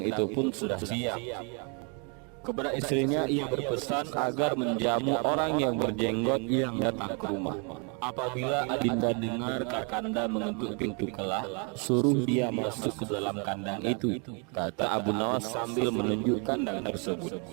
itu pun sudah siap. Kepada istrinya ia berpesan agar menjamu orang yang berjenggot yang datang ke rumah. Apabila Adinda dengar Kakanda mengetuk pintu kelah, suruh dia masuk ke dalam kandang itu, kata Abu Nawas sambil menunjuk kandang tersebut.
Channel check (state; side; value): quieter; left; 36.0 dB